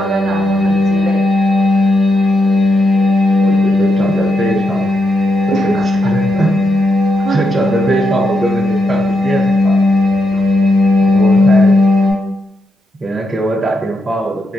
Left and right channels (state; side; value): normal; both; correlation 0.83